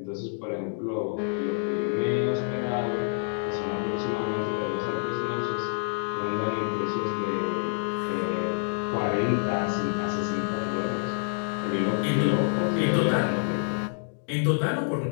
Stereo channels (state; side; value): silent; right; 60 dB below the other